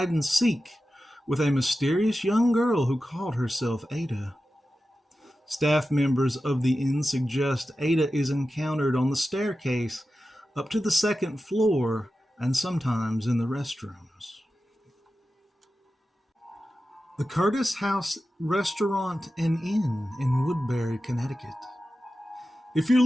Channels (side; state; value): both; normal; correlation 0.93